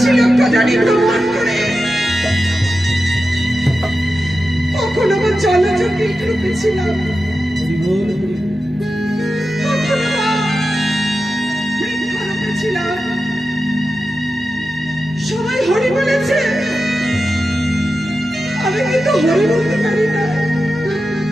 লক্ষ জানি ভ্রমণ করে, কখনো বা জলজ কীট রূপে ছিলাম, কখনো বা বৃক্ষ রূপে ছিলাম। সবাই হরি বলেছে, আমি কিন্তু হরি বলতে পারি না।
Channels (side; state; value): both; normal; correlation 0.91